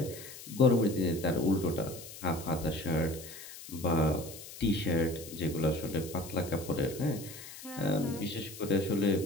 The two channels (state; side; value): noise; left; hiss, 14 dB below the sound